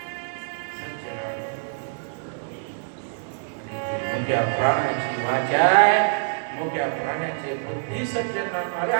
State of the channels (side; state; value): left; silent; digital silence